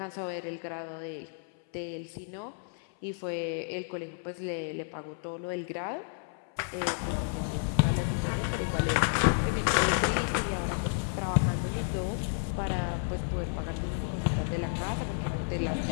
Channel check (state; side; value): silent; right; 57 dB below the other